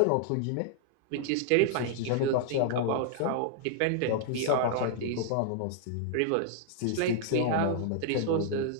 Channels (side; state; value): both; different; correlation -0.01